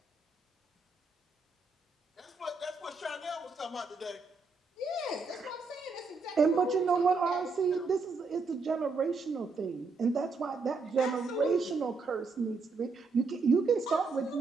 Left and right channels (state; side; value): quieter; left; 4.1 dB